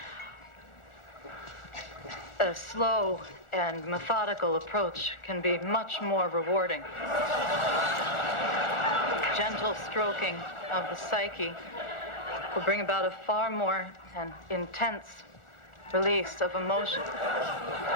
a slow and methodical approach can be much more rewarding. Gentle stroking of the psyche will bring about a far more intense release of emotion,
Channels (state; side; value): late; right; 1.4 ms